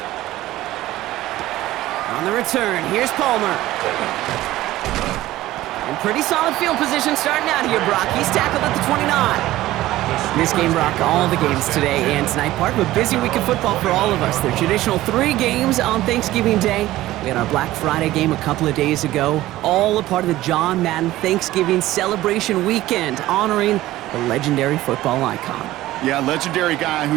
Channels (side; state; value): left; quieter; 15.9 dB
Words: On the return, here's Palmer. And pretty solid field position starting out here, Brock. He's tackled at the 29. This game, Brock, all the games today and tonight, part of a busy week of football for all of us. The traditional 3 games on Thanksgiving Day. We had our Black Friday game a couple of days ago, all a part of the John Madden Thanksgiving celebration weekend, honoring the legendary football icon. Yeah, legendary guy